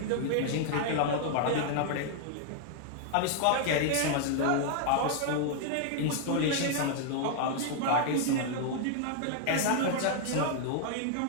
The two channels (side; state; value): both; different; correlation 0.00